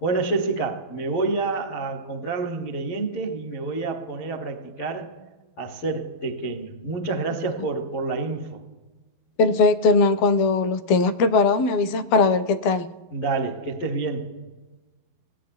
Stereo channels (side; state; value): right; late; 12 ms